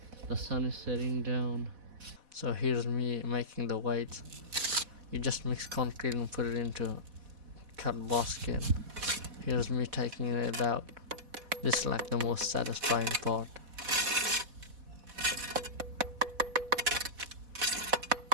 The sun is setting down. So here's me making the white. You just mix concrete and put it into cut basket. Here's me taking it out. This is like the most satisfying part.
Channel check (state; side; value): late; left; 4.1 ms